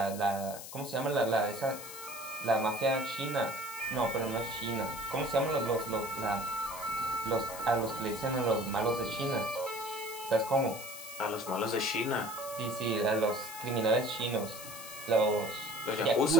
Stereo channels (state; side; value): noise; left; hiss, 11 dB below the sound